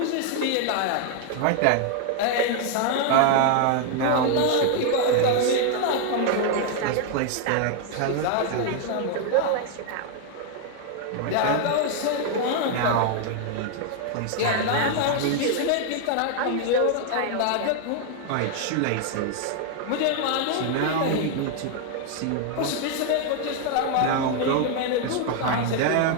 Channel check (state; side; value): different; both; correlation 0.00